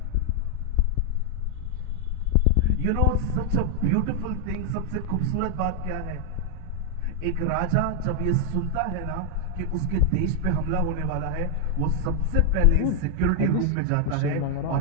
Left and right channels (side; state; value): both; different; correlation 0.00